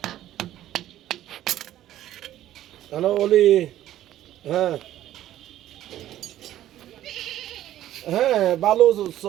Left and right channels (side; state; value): left; quieter; 12.9 dB